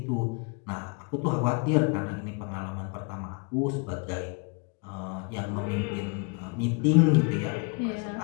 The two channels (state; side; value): quieter; right; 34.4 dB